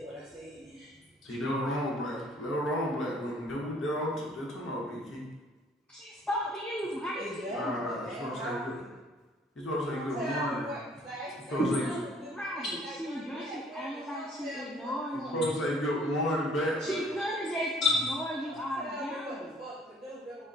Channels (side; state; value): both; normal; correlation 0.58